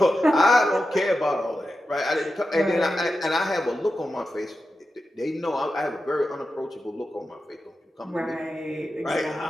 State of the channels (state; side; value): normal; both; correlation 0.91